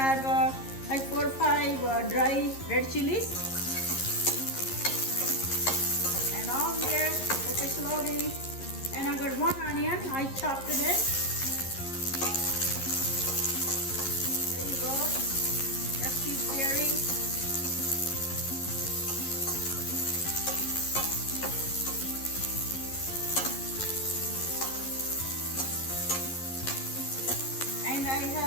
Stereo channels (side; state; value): right; late; 11 ms